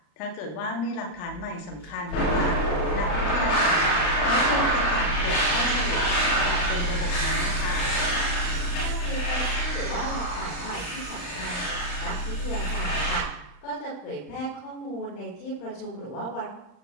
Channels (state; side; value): late; right; 39 ms